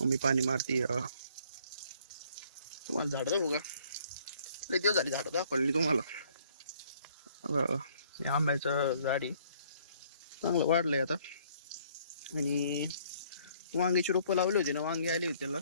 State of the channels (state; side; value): inverted; both; correlation -0.62